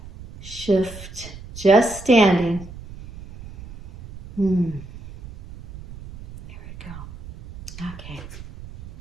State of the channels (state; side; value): noise; right; rumble, 15 dB below the sound